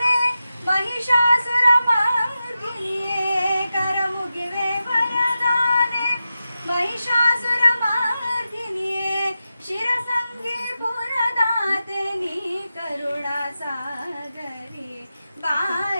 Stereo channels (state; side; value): inverted; both; correlation -0.91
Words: ಮಹಿಷಾಸುರ ಮಾರ್ಗಿನಿಯೇ, ಕರಮುಗಿವೆ ವರದಾನೆ ಮಹಿಷಾಸುರ ಮಾರ್ಗಿನಿಯೇ, ಶಿರಸಂಗಿ ಪುರದಾತೆ ನೀ ಕರುಣಾ ಸಾಗರಿ,